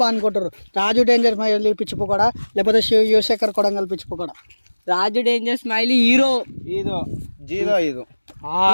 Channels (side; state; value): both; inverted; correlation -1.00